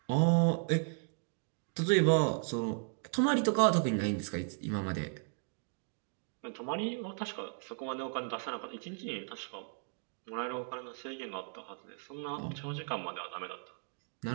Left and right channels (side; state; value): left; silent; 54 dB below the other